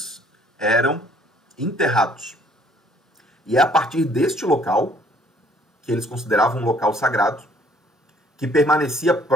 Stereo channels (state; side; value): normal; both; correlation 0.61